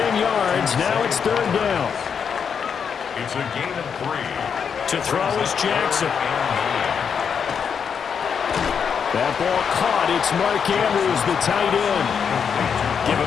yards. Now it's 3rd down. It's a gain of 3. To throw is Jackson. That ball caught. It's Mark Andrews, the tight end. Give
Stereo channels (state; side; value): quieter; right; 6.9 dB